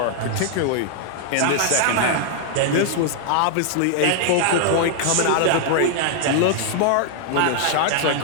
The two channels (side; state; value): both; different; correlation 0.00